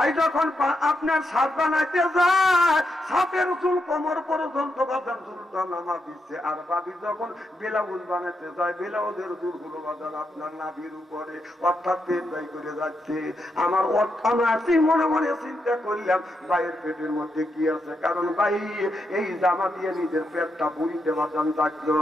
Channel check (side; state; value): both; normal; correlation 0.83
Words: যখন আপনার সাপ বানাইতে যায়, সাপের চুল কোমর পর্যন্ত বাজান চুলটা নামা দিচ্ছে। আর বাবি যখন ব্লাউজ বানাইতে যায়, ব্লাউজের চুল গুলো বাজান আপনার নাভির উপরে, অর্থাৎ পেট বাই করে যাচ্ছে। আমার অর্থাৎ মনে মনে চিন্তা করলাম ভাইয়ের পেটের মধ্যে কি আছে, কারণ ভাই এই জামা দিয়ে নিজের পেটটা বুড়িতে বাজান থাকলো।